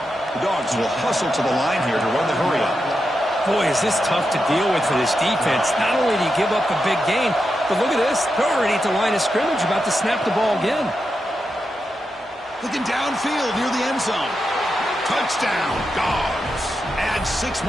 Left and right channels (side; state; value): both; normal; correlation 0.87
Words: The Dogs will hustle to the line here to run the hurry up. Boy, is this tough to deal with for this defense. Not only do you give up a big gain, but look at this. They're already at the line of scrimmage, about to snap the ball again. Looking downfield near the end zone. Touchdown, Dogs. Add 6